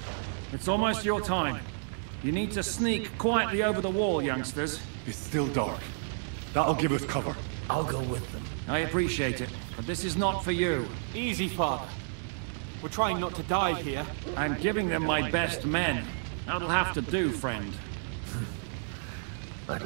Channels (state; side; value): silent; left; digital silence